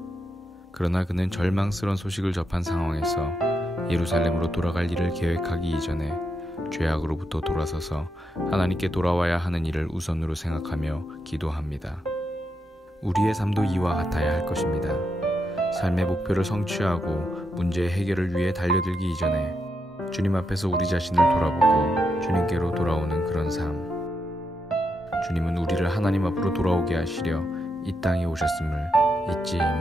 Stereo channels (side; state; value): both; normal; correlation 0.83